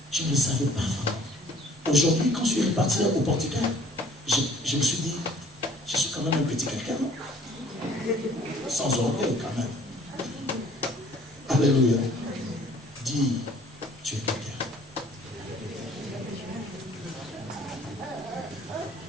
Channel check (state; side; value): normal; both; correlation 0.55